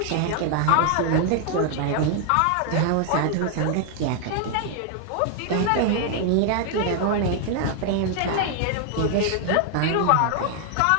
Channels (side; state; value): both; different; correlation 0.00